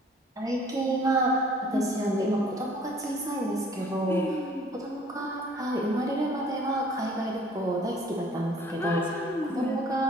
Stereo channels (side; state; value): both; normal; correlation 0.55